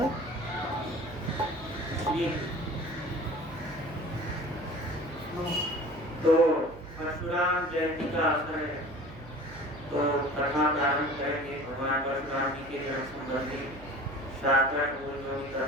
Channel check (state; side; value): noise; right; hum, 17 dB below the sound